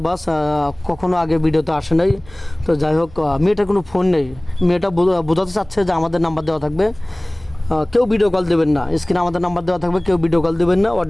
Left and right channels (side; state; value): right; noise; hum, 23 dB below the sound